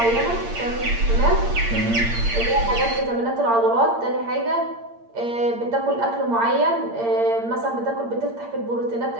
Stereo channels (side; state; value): left; late; 8.7 ms